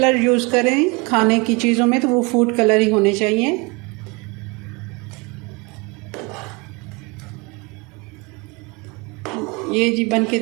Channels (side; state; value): left; quieter; 27.9 dB